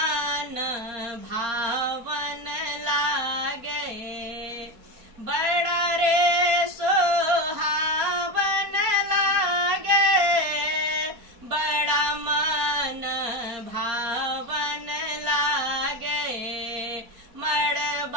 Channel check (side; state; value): left; late; 4.4 ms